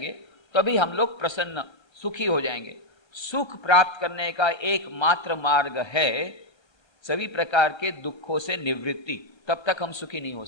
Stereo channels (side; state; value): right; late; 1.5 ms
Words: तभी हम लोग प्रसन्न सुखी हो जाएंगे। सुख प्राप्त करने का एकमात्र मार्ग है सभी प्रकार के दुखों से निवृत्ति, तब तक हम सुखी नहीं हो